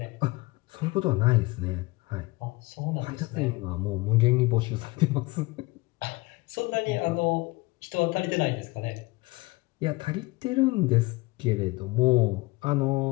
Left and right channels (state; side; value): quieter; right; 22.9 dB